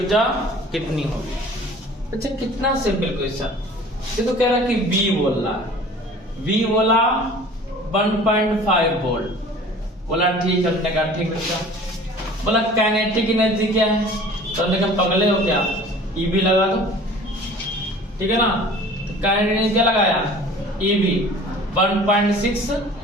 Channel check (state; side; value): normal; both; correlation 0.46